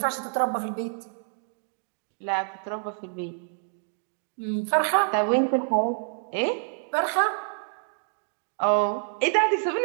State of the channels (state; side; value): silent; left; digital silence